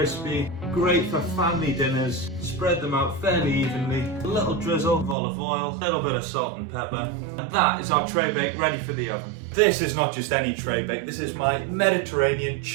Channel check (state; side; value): drops out; left; at 5.2 s